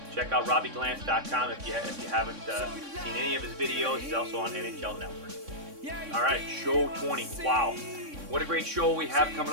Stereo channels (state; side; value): late; left; 3.6 ms